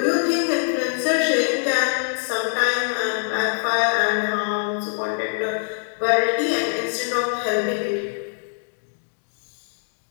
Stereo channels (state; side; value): silent; right; digital silence